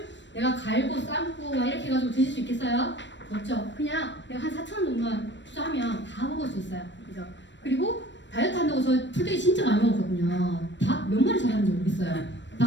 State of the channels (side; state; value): right; late; 0.53 ms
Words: 내가 갈고 삶고 막 이렇게 해가지고 드실 수 있겠어요? 없죠. 그냥 내가 한 4,000원 정도만 투자하면 다 먹을 수 있어요. 그죠? 그리고 다이어트 한다고 저 풀떼기 진짜 많이 먹었거든요. 닭 몇 마리 잘하는지 모르겠어요.